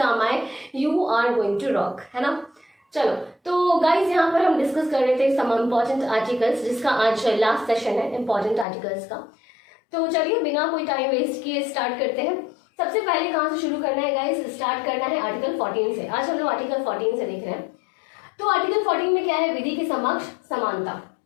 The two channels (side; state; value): right; drops out; at 8.7 s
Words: आए you are going to rock, है ना। चलो, तो गाइज यहाँ पर हम डिस्कस कर रहे थे सम इम्पॉर्टेंट आर्टिकल्स, जिसका आज लास्ट सेशन है इम्पॉर्टेंट आर्टिकल्स का। तो चलिए बिना कोई टाइम वेस्ट किए स्टार्ट करते हैं। सबसे पहले कहाँ से शुरू करना है गाइस? स्टार्ट करना है आर्टिकल 14 से। आज हम लोग आर्टिकल 14 से देख रहे हैं। तो आर्टिकल 14 में क्या है? विधि के समक्ष समानता।